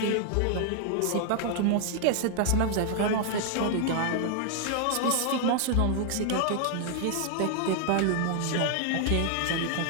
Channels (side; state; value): both; different; correlation 0.00